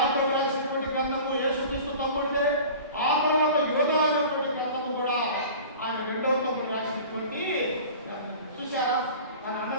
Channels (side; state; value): both; inverted; correlation -0.40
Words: రాసినటువంటి గ్రంథము యేసుక్రీస్తు తమ్ముడిదే. ఆ తర్వాత యోధా అనేటువంటి గ్రంథము కూడా ఆయన 2వ తమ్ముడు రాసినటువంటి. చూసారా ఆయన